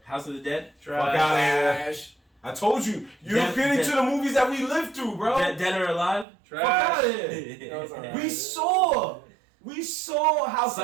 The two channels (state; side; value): drops out; left; at 6.2 s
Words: House of the Dead, Trash. Fuck out of here. Trash. I told you. You Dead- don't get into Dead- the movies that we lived through, bro. Dead or Alive. Fuck out of Trash. here. That was alright. We saw House of